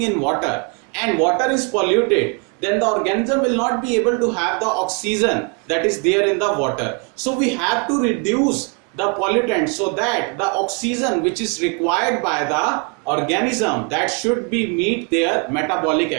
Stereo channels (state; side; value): quieter; left; 36.2 dB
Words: in water and water is polluted, then the organism will not be able to have the oxygen that is there in the water. So we have to reduce the pollutant so that the oxygen which is required by the organism, that should be meet their metabolic